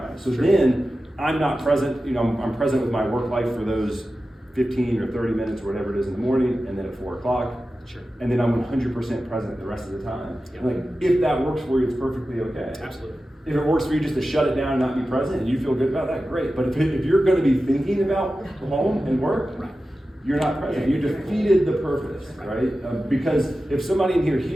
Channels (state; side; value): normal; both; correlation 0.93